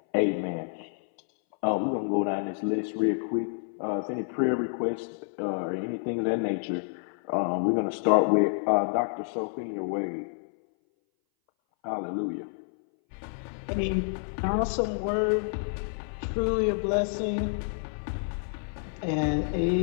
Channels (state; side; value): silent; right; 59 dB below the other